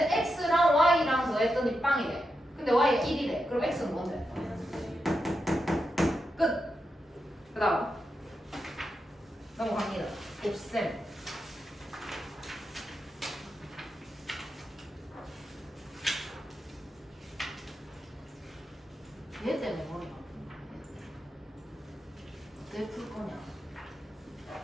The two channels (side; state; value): both; normal; correlation 0.87